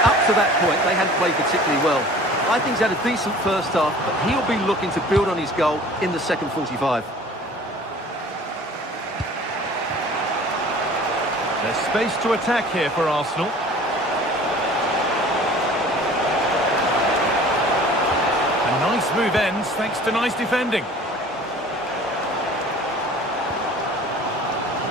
up to that point, they hadn't played particularly well. I think he's had a decent first half, but he'll be looking to build on his goal in the second 45. There's space to attack here for Arsenal. A nice move ends thanks to nice defending.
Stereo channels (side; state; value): both; normal; correlation 0.46